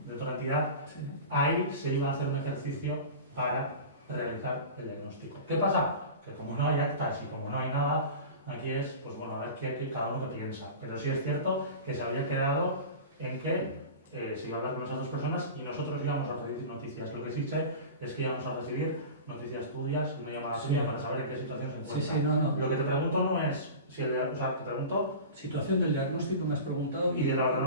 otra entidad, Sí. ahí se iba a hacer un ejercicio para realizar el diagnóstico. ¿Qué pasa? Que como no hay actas y como no hay nada, aquí es, pues bueno, a ver qué cada uno que piensa. Pero sí es cierto que se había quedado en que se iba a hablar con esas dos personas y nosotros íbamos a recibir noticias. Lo que sí sé es que íbamos a recibir noticias tuyas, una llamada tuya para saber en qué situación se encuentra. Sí, no. Lo que te pregunto no es si o sea, te pregunto Situación del diagnóstico me has preguntado. y de la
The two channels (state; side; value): inverted; both; correlation -0.33